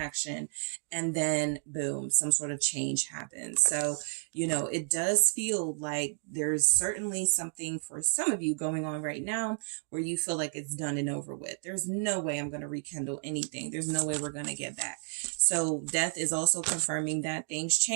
And then boom, some sort of change happens. So, you know, it does feel like there's certainly something for some of you going on right now where you feel like it's done and over with. There's no way I'm going to rekindle anything. There's no way we're going to get back. So death is also confirming that things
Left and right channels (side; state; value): left; silent; 57 dB below the other